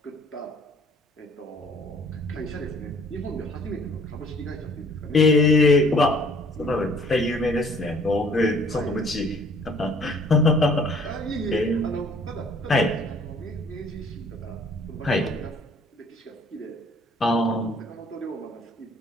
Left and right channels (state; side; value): normal; both; correlation 0.57